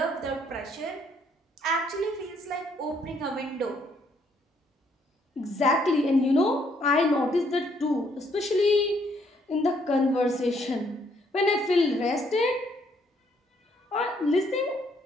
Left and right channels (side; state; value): both; normal; correlation 0.69